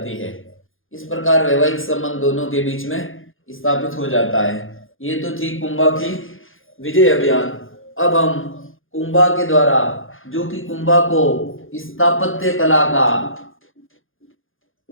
है। इस प्रकार वैवाहिक संबंध दोनों के बीच में स्थापित हो जाता है। ये तो थी कुंभा की विजय अभियान। अब हम कुंभा के द्वारा, जो कि कुंभा को स्थापत्य कला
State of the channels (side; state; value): right; late; 0.59 ms